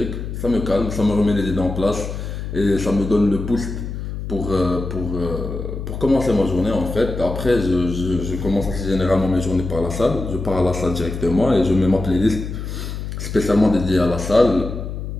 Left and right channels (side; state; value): left; noise; hum, 6 dB below the sound